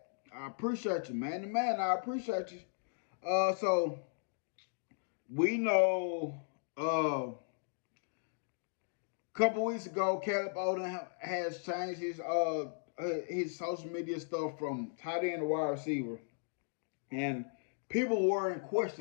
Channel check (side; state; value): right; silent; digital silence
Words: I appreciate you, man. The man, I appreciate you. So we know a couple weeks ago, Caleb Odom has changed his social media stuff from tight end to wide receiver, and people were in